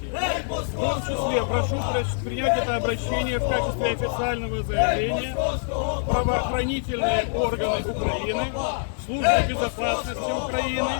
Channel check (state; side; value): silent; right; 62 dB below the other